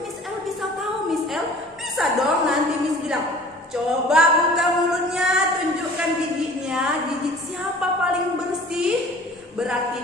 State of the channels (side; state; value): both; normal; correlation 0.47